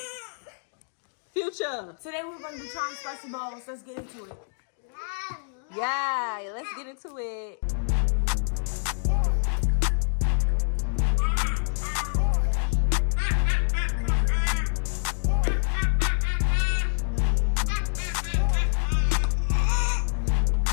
we're going to be trying spicy bowls. Let's get into it. Yeah, let's get into it.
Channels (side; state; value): right; silent; digital silence